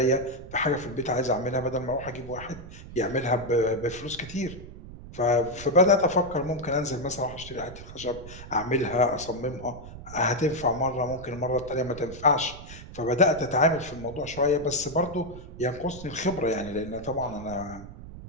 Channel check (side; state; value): right; noise; rumble, 14 dB below the sound